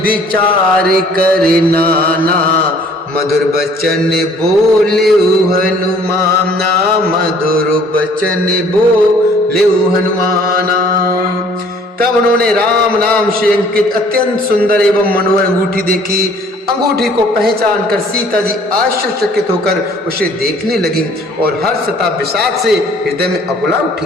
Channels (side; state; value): both; normal; correlation 0.56